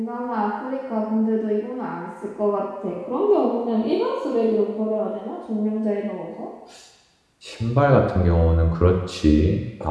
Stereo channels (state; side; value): identical; both; correlation 1.00